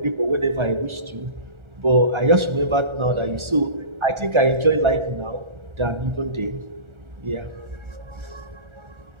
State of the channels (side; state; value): left; late; 1.4 ms